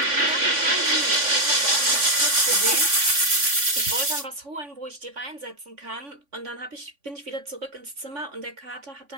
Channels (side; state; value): left; late; 3.5 ms